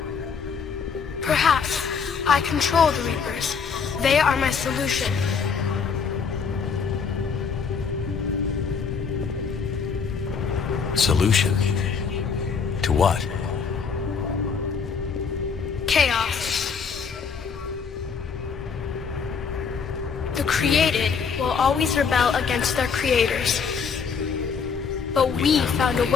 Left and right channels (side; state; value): right; quieter; 5.9 dB